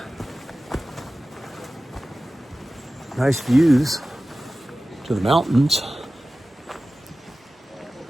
Nice views to the mountains.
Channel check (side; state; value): both; normal; correlation 0.96